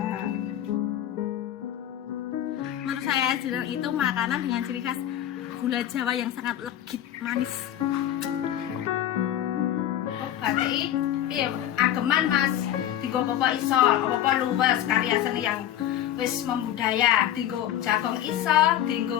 Menurut saya jenang itu makanan dengan ciri khas gula Jawa yang sangat legit, manis. Oh, batik iya ageman Mas. Digo apa iso, apa luwes karya seni yang wis membudaya. Digo jagong iso,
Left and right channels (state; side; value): quieter; right; 11.6 dB